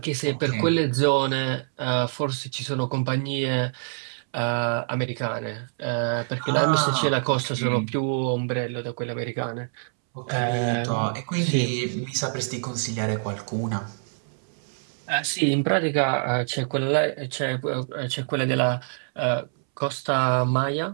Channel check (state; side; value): silent; left; 61 dB below the other